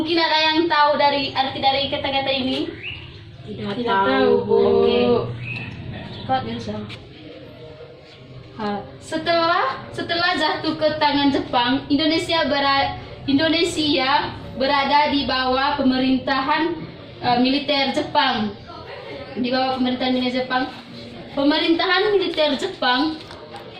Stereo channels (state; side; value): identical; both; correlation 1.00